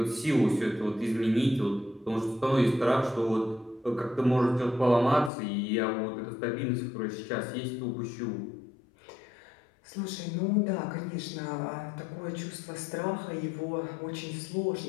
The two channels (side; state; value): right; drops out; at 5.3 s